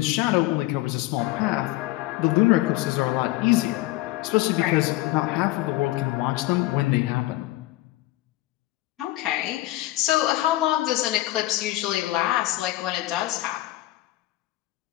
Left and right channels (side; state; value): right; quieter; 17.5 dB